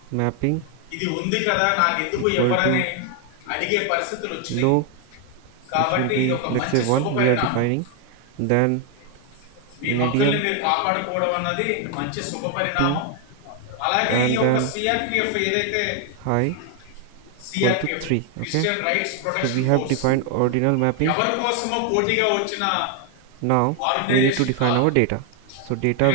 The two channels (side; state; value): both; different; correlation 0.01